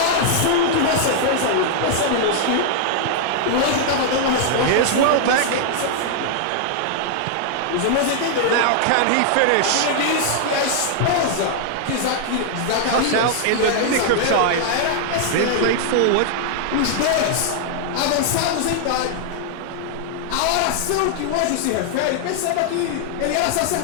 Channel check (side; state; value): both; different; correlation -0.01